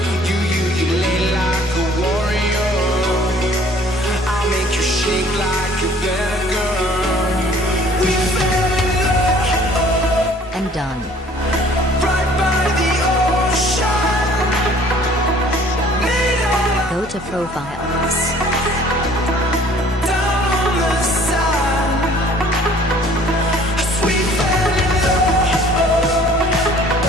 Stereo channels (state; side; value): normal; both; correlation 0.54